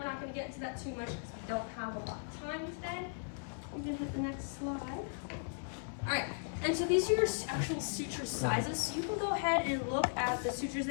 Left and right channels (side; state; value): right; silent; digital silence